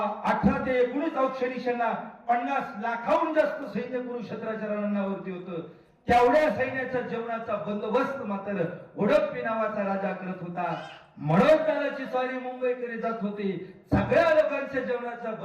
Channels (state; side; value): identical; both; correlation 1.00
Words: 18 ते 19 औक्षणी सेना, 50 लाखाहून जास्त सैन्य कुरुक्षेत्राच्या रणांगणावरती होतं. तेवढ्या सैन्याच्या जेवणाचा बंदोबस्त मात्र उडप्पी नावाचा राजा करत होता. मनोजदादाची स्वारी मुंबईकडे जात होती, सगळ्या लोकांच्या जेवणाचा